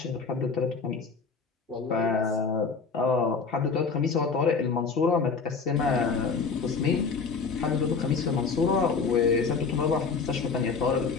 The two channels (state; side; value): quieter; right; 5.0 dB